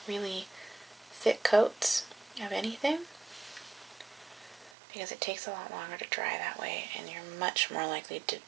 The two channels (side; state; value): left; drops out; at 4.7 s